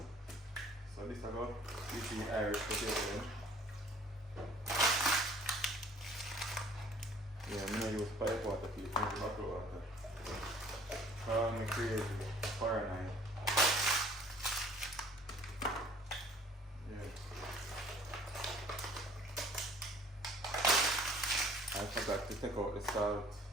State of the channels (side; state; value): both; normal; correlation 0.54